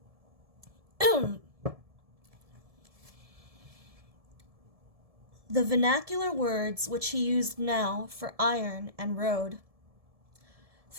The vernacular words which he used now for iron and road.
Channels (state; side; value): late; left; 1.7 ms